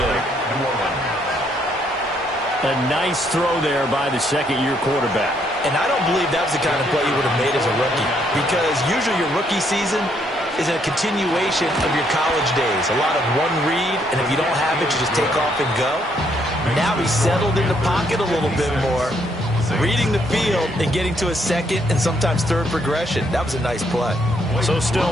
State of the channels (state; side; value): normal; both; correlation 0.71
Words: A nice throw there by the second-year quarterback. And I don't believe that was the kind of play you would have made as a rookie, because usually your rookie season is a continuation of your college days. A lot of one read, and if you don't have it, you just take off and go. Now he's settled in the pocket a little bit more. reading the field and getting to a second and sometimes third progression. That was a nice play. So